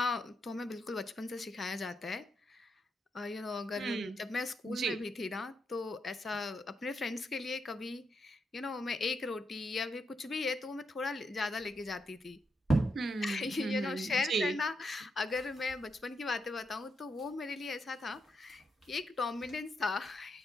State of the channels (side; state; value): both; normal; correlation 0.82